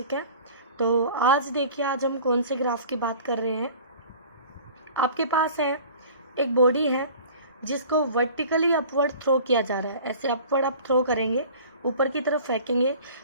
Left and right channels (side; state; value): both; inverted; correlation -0.44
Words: है। तो आज देखिए, आज हम कौन से ग्राफ की बात कर रहे हैं। आपके पास है एक बॉडी है जिसको वर्टिकली अपवर्ड थ्रो किया जा रहा है। ऐसे अपवर्ड आप थ्रो करेंगे, ऊपर की तरफ फेंकेंगे।